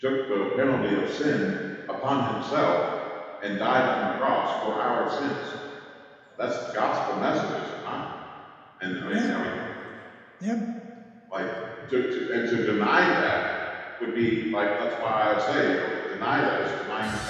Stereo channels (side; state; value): both; identical; correlation 1.00